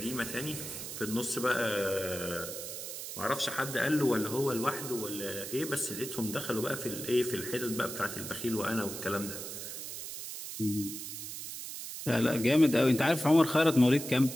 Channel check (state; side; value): noise; right; hiss, 8 dB below the sound